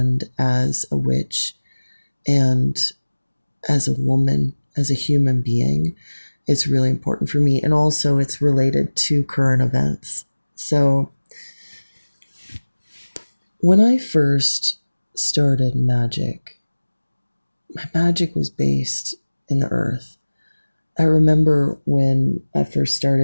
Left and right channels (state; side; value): inverted; both; correlation -1.00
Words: as a witch and as a woman, as a human being. It's really important for me. And also it's related to current events. So when I first started magic, my magic was based in the earth. I remember when I first